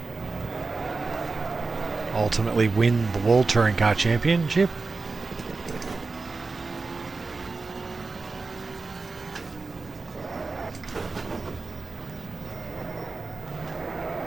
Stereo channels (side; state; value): left; quieter; 4.0 dB